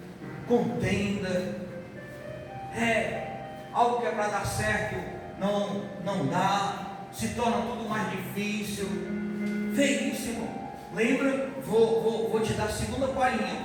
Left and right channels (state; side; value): identical; both; correlation 1.00